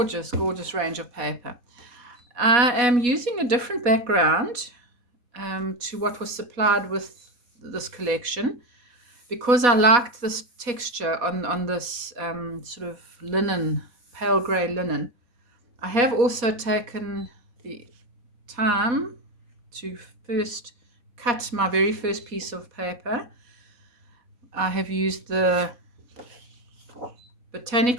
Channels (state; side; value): late; left; 4.1 ms